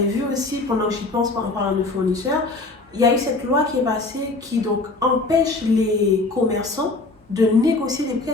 vu aussi, pendant que j'y pense en parlant de fournisseurs, il y a eu cette loi qui est passée qui donc empêche les commerçants de négocier des prix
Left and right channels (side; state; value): right; quieter; 3.3 dB